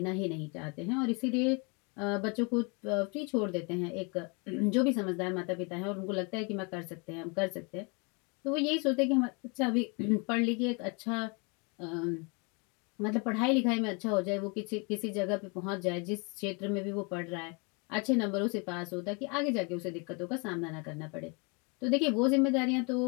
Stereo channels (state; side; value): quieter; right; 32.5 dB